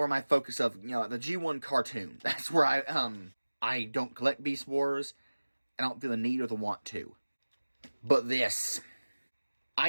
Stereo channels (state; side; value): inverted; both; correlation -1.00